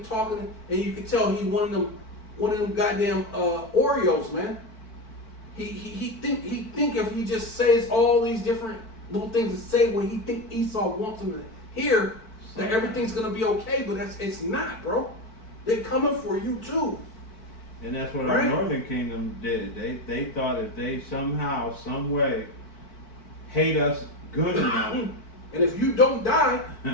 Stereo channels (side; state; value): right; late; 4.5 ms